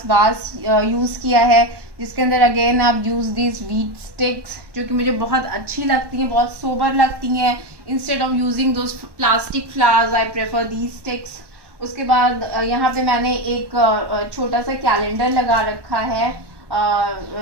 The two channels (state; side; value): late; left; 1.2 ms